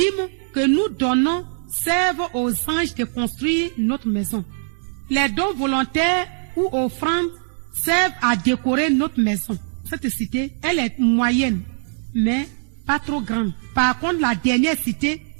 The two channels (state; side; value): silent; left; digital silence